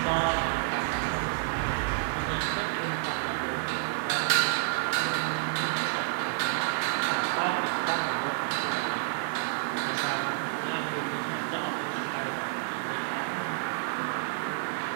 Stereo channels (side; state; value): left; silent; 56 dB below the other